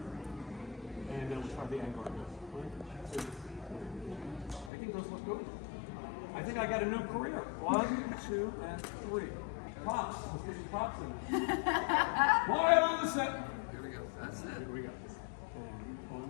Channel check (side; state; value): right; drops out; at 4.7 s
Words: And then we'll try the angle. 1, 2. I think those look good. I think I got a new career. 1, 2, and 3. Props. Let's get some props in. Quiet on the set. Here we go. That's it. Here we go. And